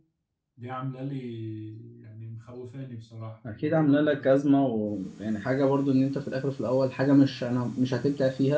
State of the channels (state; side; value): identical; both; correlation 1.00